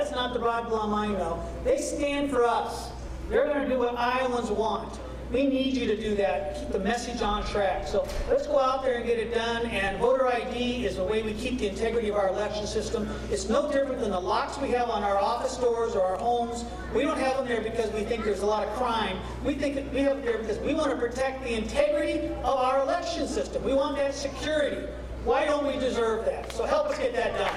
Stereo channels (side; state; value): both; identical; correlation 1.00